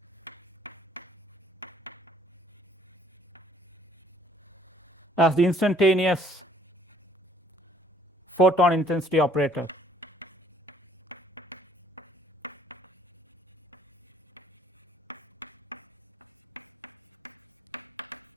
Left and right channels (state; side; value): normal; both; correlation 0.60